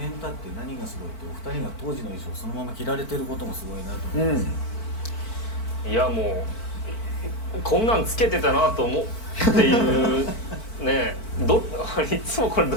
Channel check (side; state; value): right; late; 4.5 ms